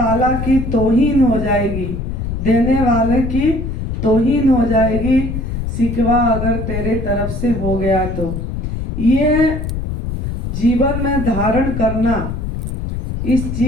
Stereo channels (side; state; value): left; noise; rumble, 4 dB below the sound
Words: की तौहीन हो जाएगी, देने वाले की तौहीन हो जाएगी, शिकवा अगर तेरे तरफ से हो गया तो। ये जीवन में धारण करना, इस